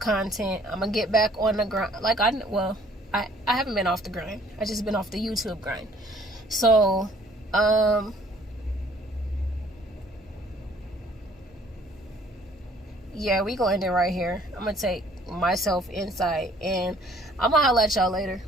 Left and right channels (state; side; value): normal; both; correlation 0.58